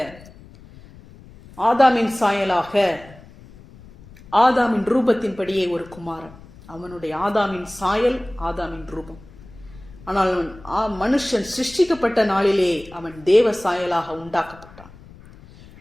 ஆதாமின் சாயலாக ஆதாமின் ரூபத்தின்படியே ஒரு குமாரன். அவனுடைய ஆதாமின் சாயல், ஆதாமின் ரூபம். ஆனால் மனுஷன் சிருஷ்டிக்கப்பட்ட நாளிலே அவன் தேவ சாயலாக உண்டாக்கப்பட்டான்.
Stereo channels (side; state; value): left; noise; rumble, 21 dB below the sound